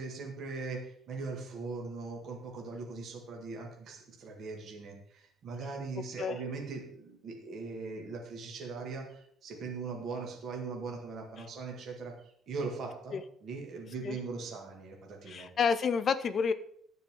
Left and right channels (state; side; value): normal; both; correlation 0.64